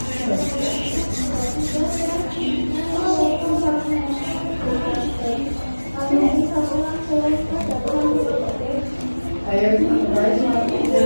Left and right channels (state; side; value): inverted; both; correlation -1.00